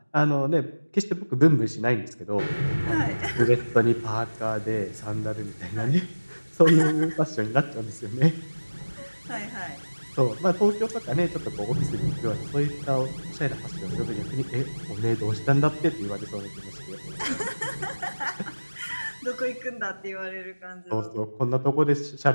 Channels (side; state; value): both; inverted; correlation -1.00